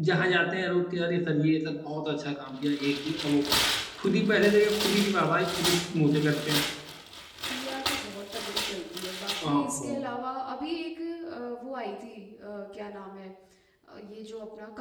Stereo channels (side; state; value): both; identical; correlation 1.00